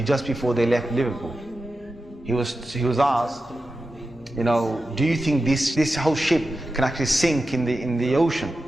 just before they left Liverpool. He was asked, do you think this whole ship can actually sink in the ocean?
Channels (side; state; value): both; normal; correlation 0.91